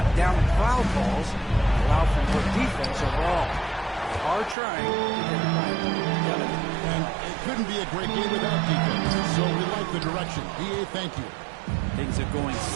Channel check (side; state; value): left; drops out; at 4.5 s